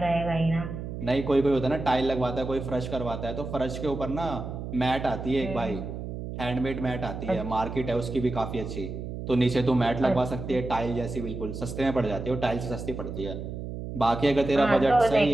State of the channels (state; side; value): noise; right; hum, 7 dB below the sound